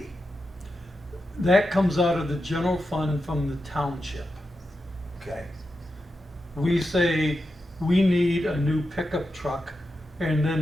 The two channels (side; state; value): both; normal; correlation 0.88